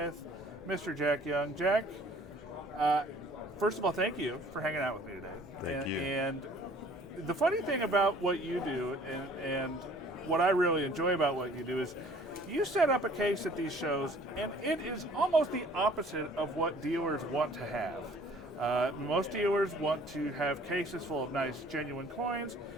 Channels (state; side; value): normal; both; correlation 0.54